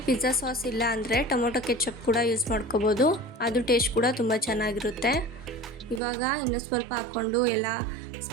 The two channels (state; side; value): drops out; left; at 6.0 s